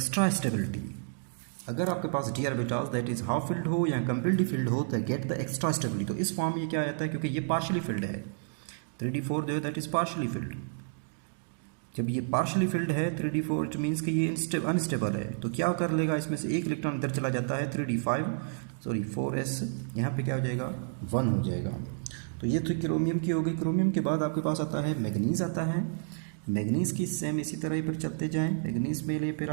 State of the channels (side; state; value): left; silent; digital silence